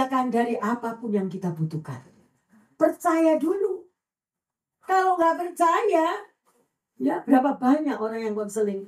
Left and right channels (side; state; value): both; identical; correlation 1.00